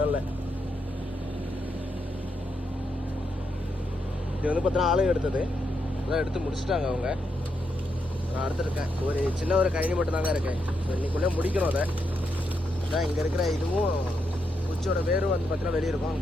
இல்லை. இது வந்து பார்த்தீங்கன்னா ஆளுங்க எடுத்தது அதான் எடுத்து முடிச்சுட்டாங்க அவங்க. நான் அடுத்துருக்கேன் ஒரு சின்ன ஒரு கழனி மட்டும்தாங்க இருக்கேன். ஸோ இன்னைக்குள்ளே முடிக்கணும் அதை. அதான் இங்கே இருக்கிற இதுவும் குச்சியோட வேரும் வந்து பார்த்தீங்கன்னா வெளியே இருக்கும். அங்கே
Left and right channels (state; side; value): normal; both; correlation 0.81